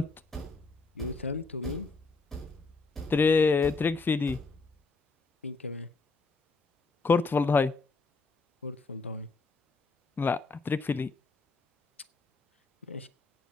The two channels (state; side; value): quieter; right; 4.0 dB